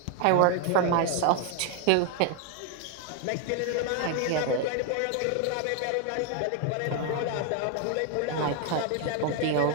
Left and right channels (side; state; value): both; different; correlation 0.01